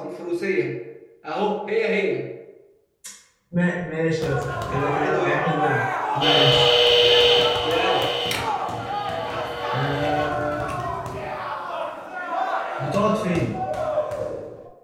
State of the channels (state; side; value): identical; both; correlation 1.00